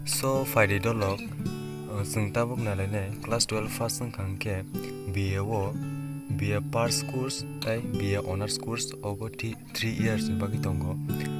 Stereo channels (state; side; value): identical; both; correlation 1.00